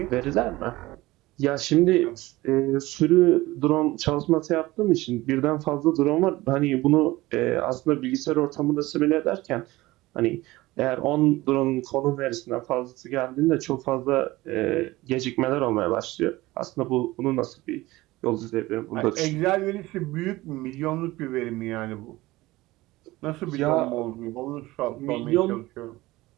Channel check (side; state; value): left; quieter; 19.0 dB